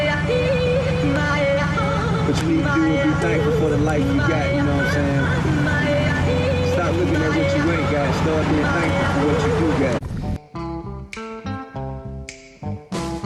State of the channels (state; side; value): identical; both; correlation 1.00